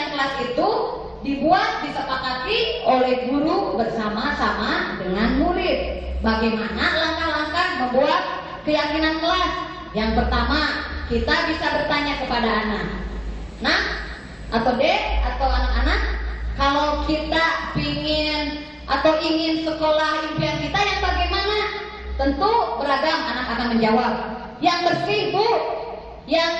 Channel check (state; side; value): identical; both; correlation 1.00